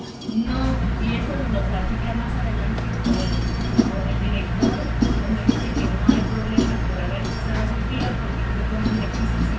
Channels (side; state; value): both; identical; correlation 1.00